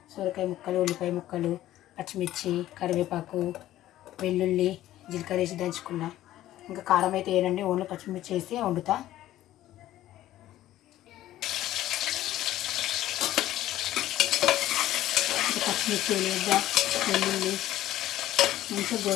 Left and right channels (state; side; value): quieter; right; 14.0 dB